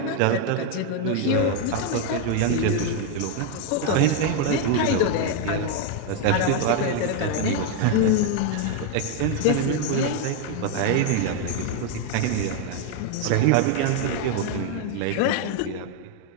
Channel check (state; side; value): different; both; correlation 0.01